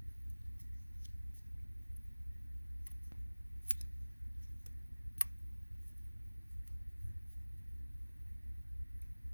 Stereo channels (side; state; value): both; inverted; correlation -1.00